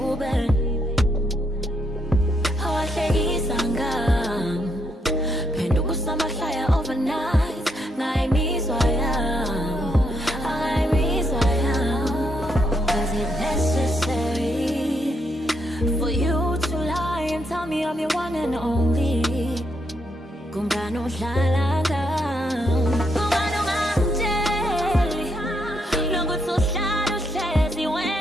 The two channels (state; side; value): normal; both; correlation 0.77